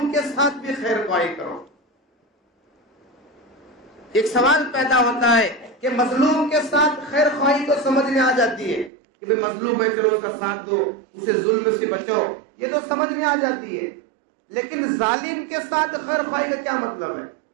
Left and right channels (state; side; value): drops out; left; at 8.9 s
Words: کے ساتھ بھی خیر خواہی کرو. ایک سوال پیدا ہوتا ہے کہ مظلوم کے ساتھ خیر خواہی تو سمجھ میں آ جاتی ہے کہ بھئی مظلوم ہے چلو اس کا ساتھ دو، اسے ظلم سے بچو، یہ تو سمجھ میں آ جاتی ہے. لیکن ظالم کے ساتھ خیر خواہی کا کیا مطلب ہے؟